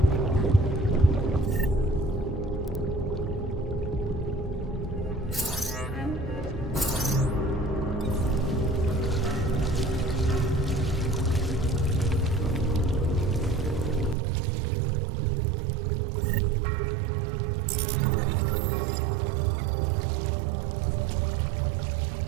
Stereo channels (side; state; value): left; drops out; at 14.2 s